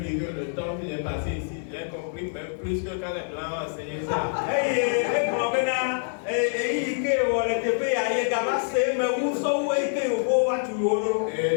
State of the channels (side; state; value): right; silent; digital silence